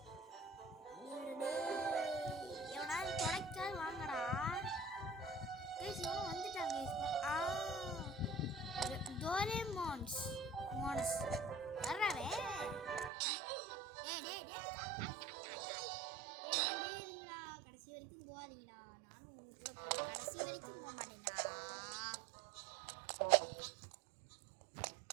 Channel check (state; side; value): drops out; left; at 13.1 s